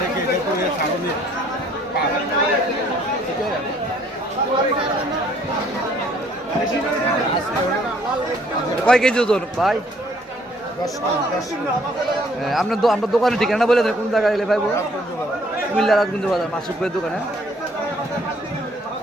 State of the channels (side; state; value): both; normal; correlation 0.62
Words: ছাড়নি কয় কেজি ওজন ভাই? আপনার আপনার দোকানের ঠিকানা বলে দেন, কোন জায়গায় এলে পাইবো? কুমিল্লা রাজগঞ্জ বাজার মাসুক ভাইয়ের দোকানে।